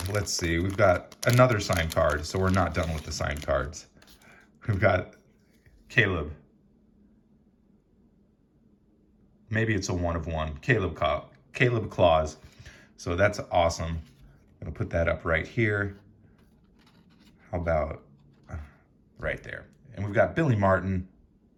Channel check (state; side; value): identical; both; correlation 1.00